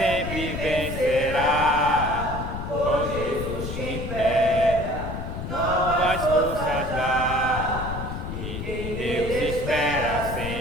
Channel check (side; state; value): left; noise; rumble, 6 dB below the sound